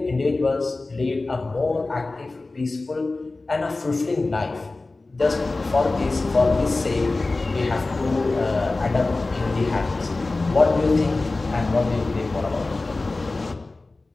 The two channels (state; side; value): quieter; right; 3.3 dB